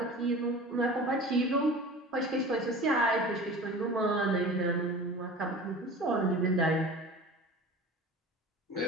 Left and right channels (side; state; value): both; normal; correlation 0.38